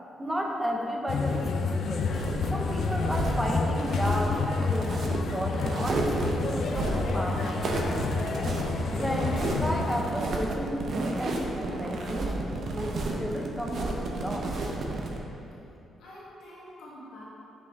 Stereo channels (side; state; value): both; normal; correlation 0.79